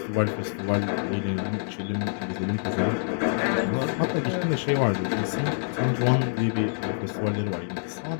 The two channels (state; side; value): silent; right; digital silence